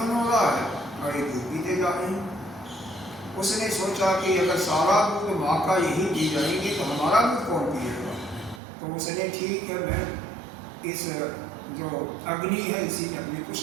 है और ये दूध पीते जा रहे हैं। उसने सोचा कि अगर सारा दूध माँ का यही पी जाएंगे तो हमारा दूध कौन पिएगा। तो उसने ठीक है, मैं इस जो अग्नि है इसी में अपने को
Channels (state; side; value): drops out; left; at 8.6 s